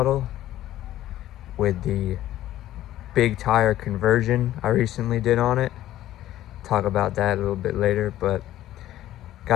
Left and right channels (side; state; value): right; quieter; 13.6 dB